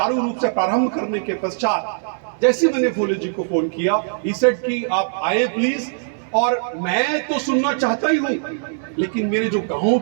रूप से प्रारंभ करने के पश्चात जैसे मैंने फूले जी को फोन किया, ही सेड कि आप आए प्लीज। और मैं तो सुनना चाहता ही हूं, लेकिन मेरे जो गांव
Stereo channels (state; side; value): silent; left; digital silence